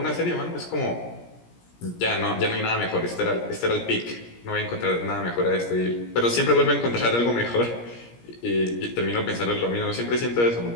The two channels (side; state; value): right; late; 17 ms